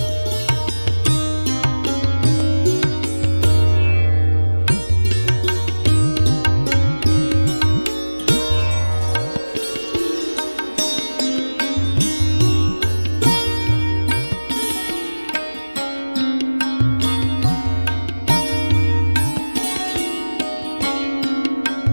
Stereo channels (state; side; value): inverted; both; correlation -1.00